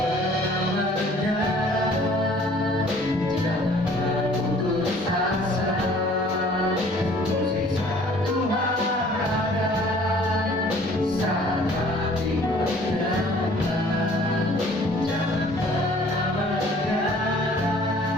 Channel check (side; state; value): both; normal; correlation 0.54